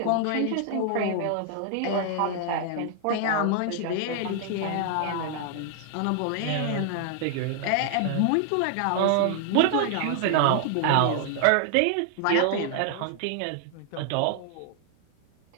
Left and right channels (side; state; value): both; different; correlation 0.00